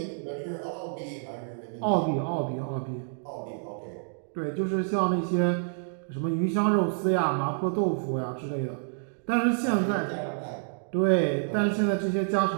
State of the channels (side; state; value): left; silent; digital silence